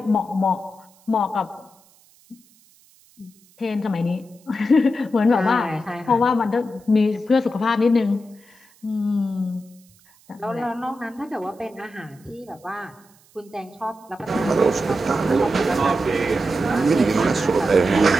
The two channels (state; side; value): noise; right; hiss, 30 dB below the sound